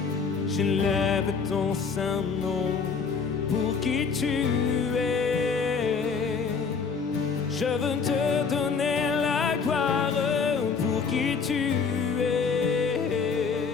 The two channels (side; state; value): right; quieter; 5.5 dB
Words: J'élève ton saint nom, pour qui tu es. Je veux te donner la gloire, pour qui tu es.